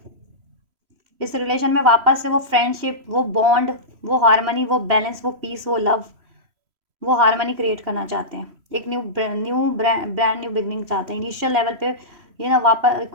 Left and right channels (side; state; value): left; late; 3.0 ms